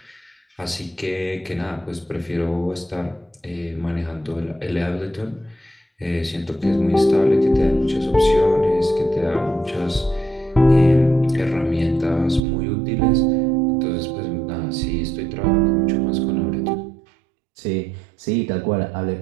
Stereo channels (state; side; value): drops out; left; at 12.4 s